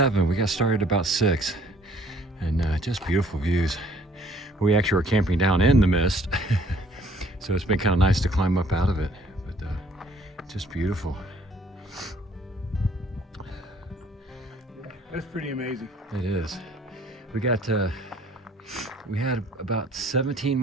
We got started about 6, and just beautiful views. We actually are camping down in the mist, so it's been kind of nice to climb up out of it, but just beautiful. That's pretty amazing. It is. We had about 17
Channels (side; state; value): both; normal; correlation 0.59